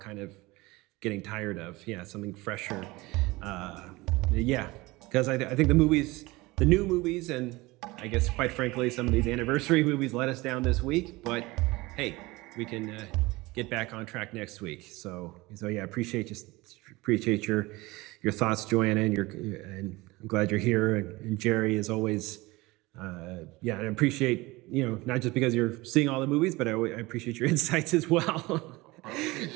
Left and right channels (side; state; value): left; quieter; 21.5 dB